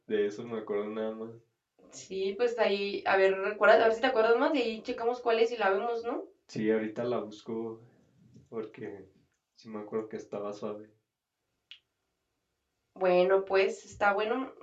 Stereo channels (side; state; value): both; identical; correlation 1.00